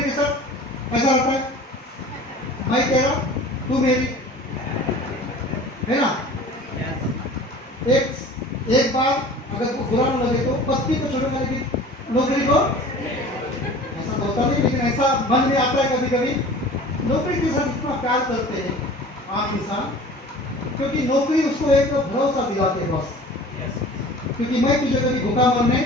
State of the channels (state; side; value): normal; both; correlation 0.42